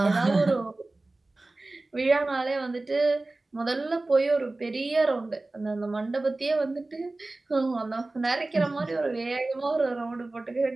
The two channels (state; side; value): quieter; left; 3.0 dB